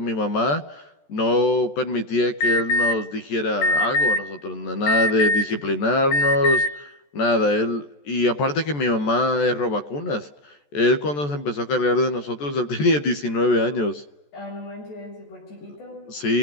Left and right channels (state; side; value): late; right; 14 ms